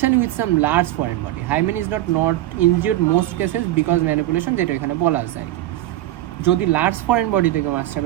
with some large foreign body. Hymen is not injured most cases because manipulation, যেটা এখানে বলা আছে আর কি। যদি লার্জ ফরেন বডি থেকে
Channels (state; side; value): quieter; left; 14.9 dB